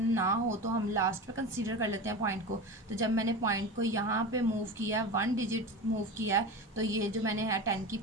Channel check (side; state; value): both; normal; correlation 0.27